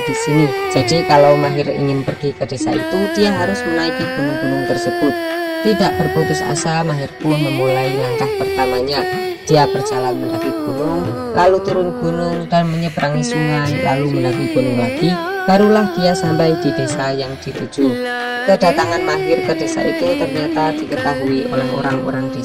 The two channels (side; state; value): both; identical; correlation 1.00